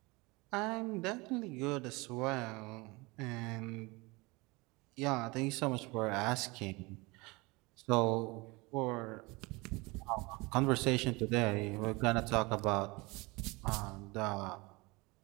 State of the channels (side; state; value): left; quieter; 24.8 dB